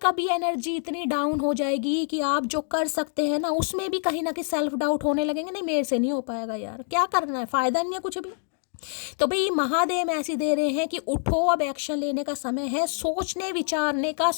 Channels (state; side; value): silent; right; 56 dB below the other